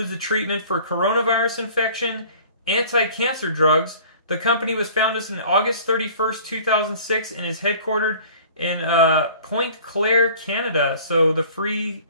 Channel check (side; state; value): both; inverted; correlation -0.48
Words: the treatment for coronavirus infection, anti-cancer drugs. The company was founded on August 31st, 2006, and is headquartered in Pointe Claire, Canada, so the free